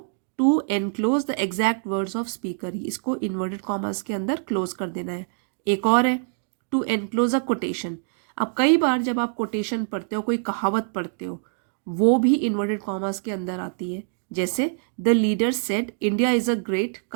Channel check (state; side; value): silent; left; digital silence